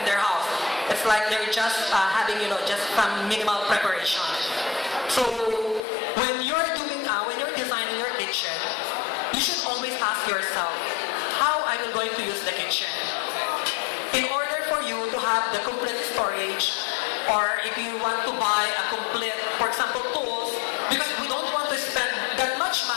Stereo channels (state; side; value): drops out; right; at 5.8 s